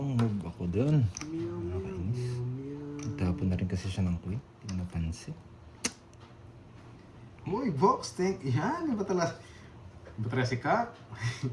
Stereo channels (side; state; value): both; identical; correlation 1.00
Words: move ako dun. Meow. Tapon na rin kasi siya ng queen. Hindi ko napansin. Uy, box, thank yan. Iba talaga si Kap.